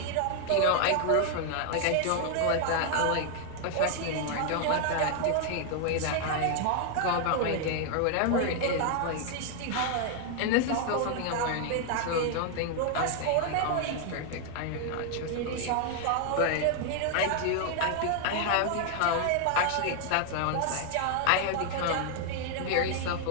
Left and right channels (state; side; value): different; both; correlation 0.00